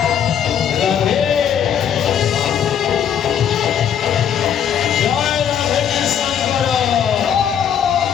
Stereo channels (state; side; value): quieter; right; 8.7 dB